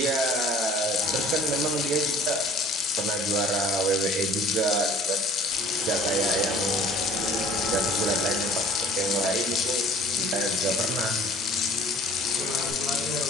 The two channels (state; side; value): normal; both; correlation 0.49